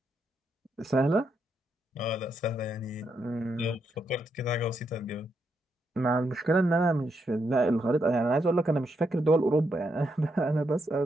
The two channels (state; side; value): normal; both; correlation 0.80